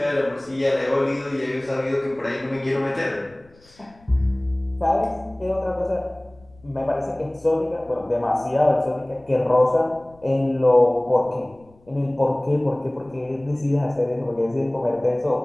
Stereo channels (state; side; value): noise; left; rumble, 29 dB below the sound